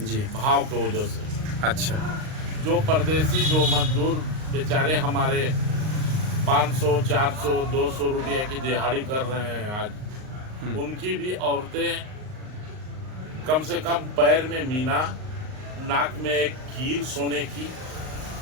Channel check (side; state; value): left; late; 38 ms